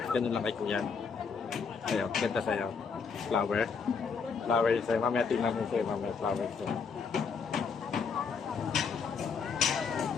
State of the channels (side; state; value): right; quieter; 5.7 dB